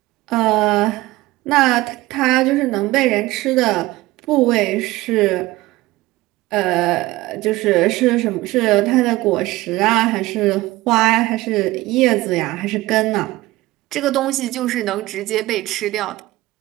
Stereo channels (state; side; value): quieter; left; 18.7 dB